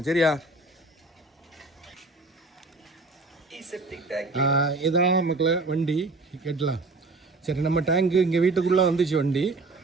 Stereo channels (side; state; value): left; quieter; 3.3 dB